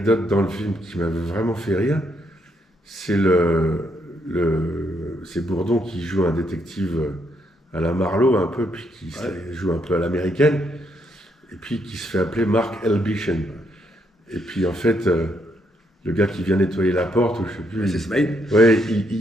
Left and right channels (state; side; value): normal; both; correlation 0.75